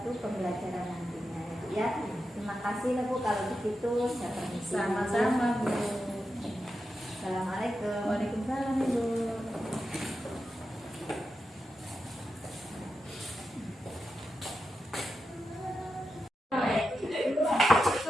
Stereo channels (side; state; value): both; normal; correlation 0.89